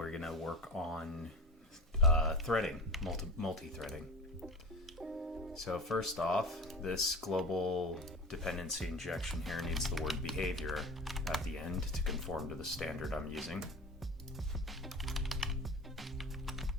going to work on threading, multi-threading. So first off, this global dependency injection here needs the word behavior at the end to conform to the standard I'm using.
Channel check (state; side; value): normal; both; correlation 0.32